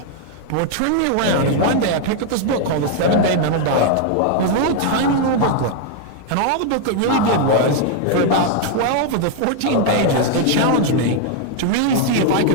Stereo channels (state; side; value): different; both; correlation 0.00